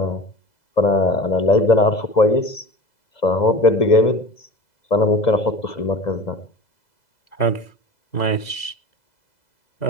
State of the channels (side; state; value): right; late; 2.0 ms